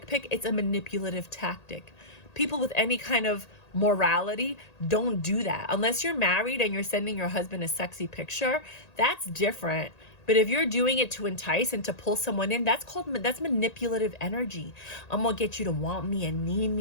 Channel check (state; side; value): late; right; 1.8 ms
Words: pic, it's a manipulative tactic. People with any kind of morality don't do that. Unless you're married and you're sending your husband a sexy picture, that's different. But if you're doing it to entice and to pull someone in, that's manipulative energy. I'm going to get you to want me and need